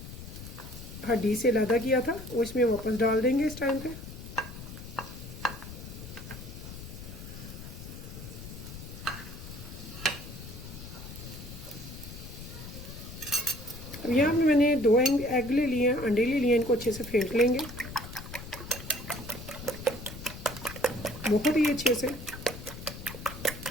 हड्डी से अलग किया था, वो इसमें वापस डाल देंगे इस टाइम पे। अब यहाँ पे मैंने 2 एग ले लिए हैं, अंडे ले लिए हैं, इनको अच्छे से फेंट लेंगे बहुत ही अच्छे से।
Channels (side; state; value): left; noise; rumble, 12 dB below the sound